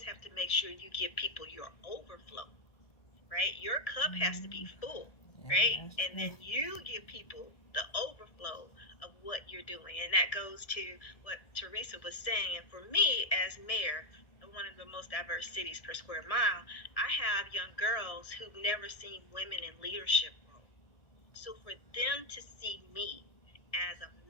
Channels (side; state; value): right; late; 1.6 ms